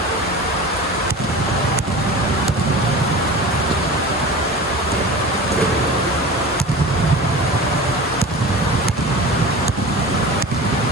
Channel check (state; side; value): normal; both; correlation 0.34